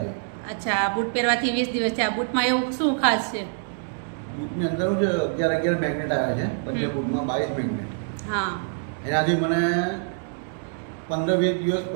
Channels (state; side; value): silent; left; digital silence